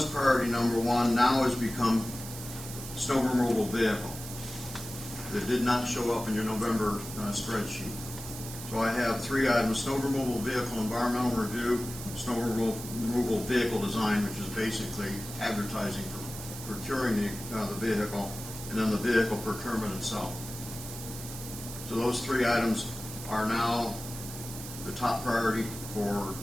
priority number 1 now has become snow removal vehicle. That did not show up in your November spreadsheet. So I have 3 items: snow removal vehicle environmental review, snow removal vehicle design, which is basically advertising for procuring the vehicle, and then the vehicle procurement itself. So those 3 items are now the top priority for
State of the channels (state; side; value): noise; right; hiss, 11 dB below the sound